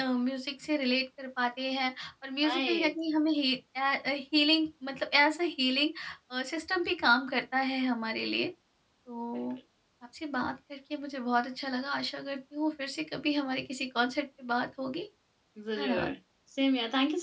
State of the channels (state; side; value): identical; both; correlation 1.00